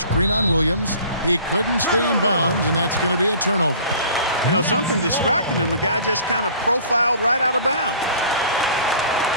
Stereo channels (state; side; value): inverted; both; correlation -0.47